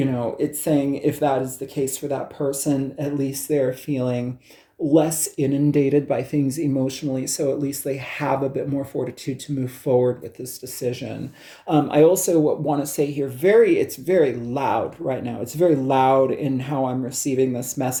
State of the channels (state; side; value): identical; both; correlation 1.00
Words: saying if that is the case for that person, at least they're feeling less inundated by things emotionally, so at least they have a bit more fortitude to move forward with this decision. I also want to say here, it's very loud right now. It's very loud in how I'm receiving this